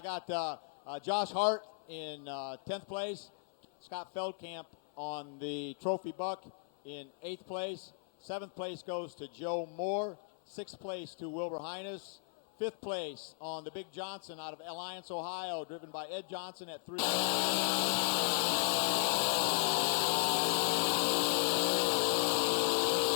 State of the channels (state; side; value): silent; right; 54 dB below the other